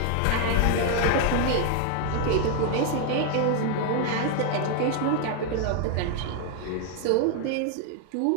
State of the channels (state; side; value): different; both; correlation 0.00